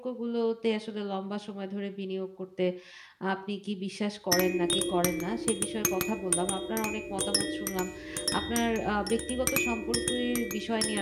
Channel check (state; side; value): identical; both; correlation 1.00